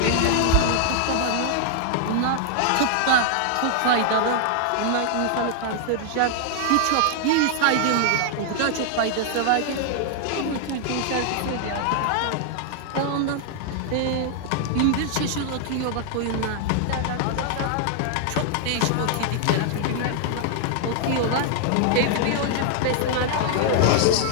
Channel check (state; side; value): different; both; correlation 0.00